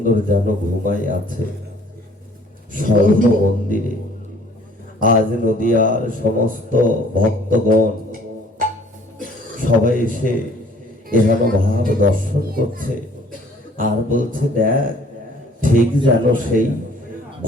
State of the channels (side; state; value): both; normal; correlation 0.56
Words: যেন ঘুমাই আছে স্বর্ণ মন্দিরে। আজ নদিয়ার সমস্ত ভক্তগণ সবাই এসে এহেন ভাব দর্শন করছে আর বলছে দেখ ঠিক যেন সেই